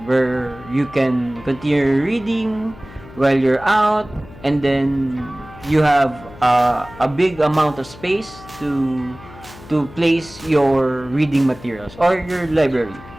where you can continue reading while you're out, and then you have a big amount of space to place your reading materials or your library.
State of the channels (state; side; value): noise; left; hum, 19 dB below the sound